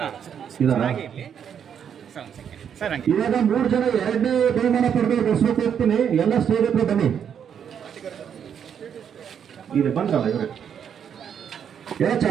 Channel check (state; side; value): quieter; left; 8.2 dB